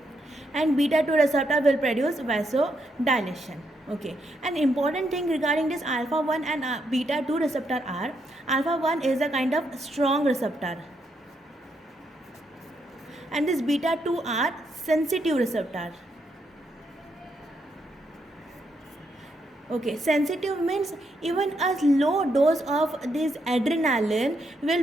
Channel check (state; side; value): normal; both; correlation 0.78